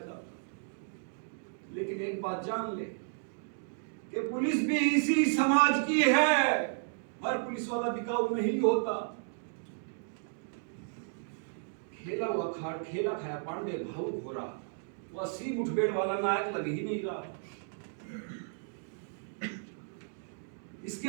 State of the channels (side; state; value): left; silent; digital silence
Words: लेकिन एक बात जान ले कि पुलिस भी इसी समाज की है। हर पुलिस वाला बिकाऊ नहीं होता। खेला खाया पांडे भावुक हो रहा, वह सी मुठभेड़ वाला नायक लग ही नहीं रहा।